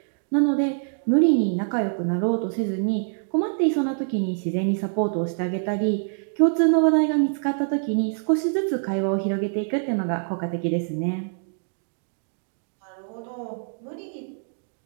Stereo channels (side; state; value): left; silent; digital silence